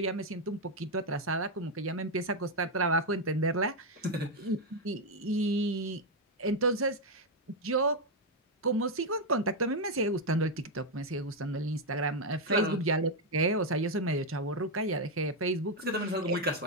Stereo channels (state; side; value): normal; both; correlation 0.03